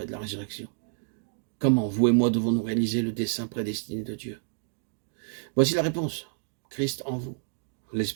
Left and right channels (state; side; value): silent; left; digital silence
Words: et de la résurrection. Comment vous et moi devons-nous réaliser le dessein prédestiné de Dieu? Voici la réponse. Christ en vous,